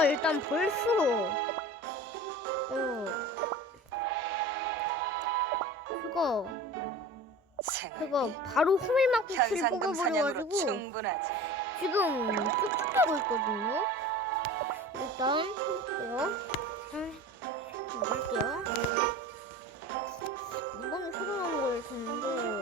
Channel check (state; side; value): normal; both; correlation 0.37